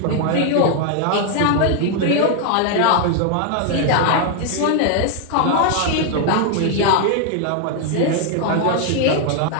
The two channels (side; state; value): both; different; correlation 0.00